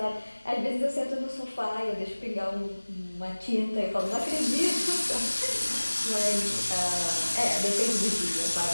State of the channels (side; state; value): both; inverted; correlation -1.00